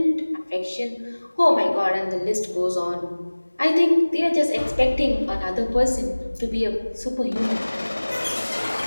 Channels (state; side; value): inverted; both; correlation -1.00